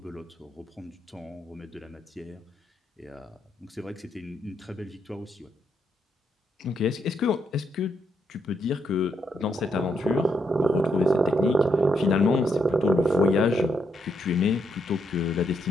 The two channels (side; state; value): both; normal; correlation 0.78